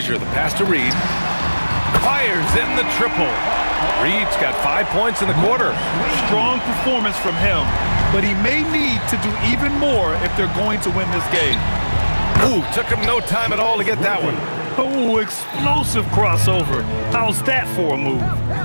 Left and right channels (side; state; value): both; inverted; correlation -1.00